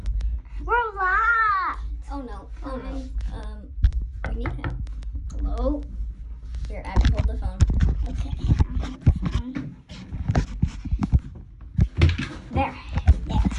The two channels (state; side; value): identical; both; correlation 1.00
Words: We're locked. Oh no. Oh no. We need help. Hello? Here, Abby, hold the phone. Okay. There. Yes.